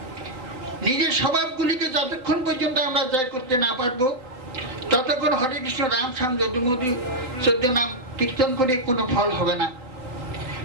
নিজের স্বভাবগুলিকে যতক্ষণ পর্যন্ত আমরা জয় করতে না পারবো, ততক্ষণ হরে কৃষ্ণ রাম শ্যাম যদুমধু 14 নাম কীর্তন করে কোনো ফল হবে না।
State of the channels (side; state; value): left; late; 3.9 ms